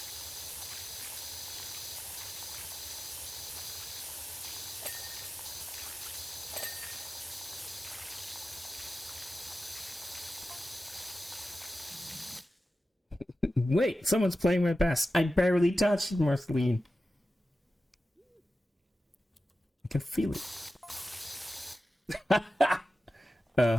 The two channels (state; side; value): normal; both; correlation 0.93